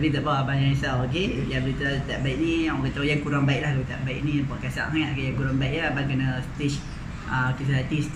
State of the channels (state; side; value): identical; both; correlation 1.00